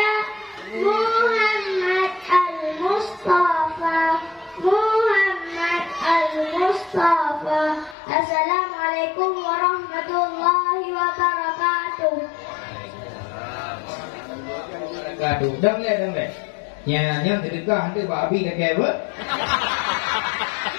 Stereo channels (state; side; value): drops out; right; at 8.0 s